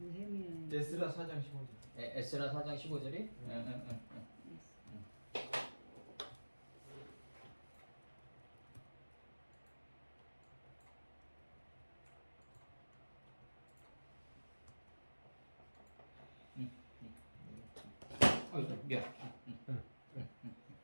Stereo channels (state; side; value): inverted; both; correlation -1.00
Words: 에스라 4장 15절. 에스라 4장 15절이? 미안.